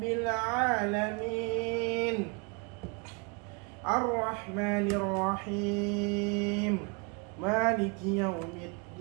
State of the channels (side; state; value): left; quieter; 32.1 dB